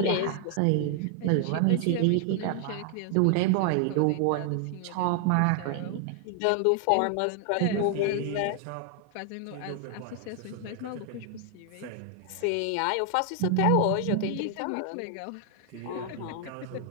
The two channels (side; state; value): both; different; correlation 0.00